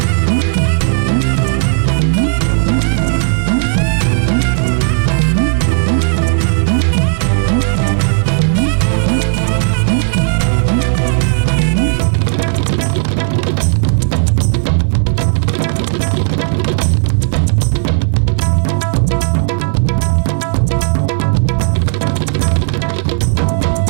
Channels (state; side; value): silent; left; 69 dB below the other